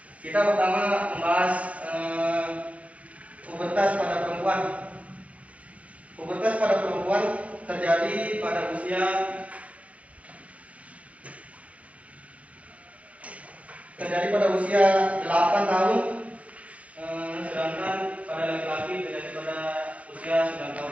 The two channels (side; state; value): left; late; 0.065 ms